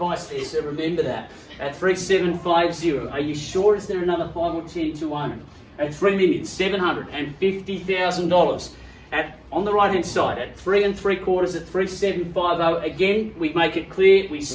there, so remember that. At 3750, are you sure? Is there another 5 or 10 to own? At $3,750,000. On the right hand side, at 3 3/4 at 3750. Again, we make it clear, we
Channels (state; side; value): identical; both; correlation 1.00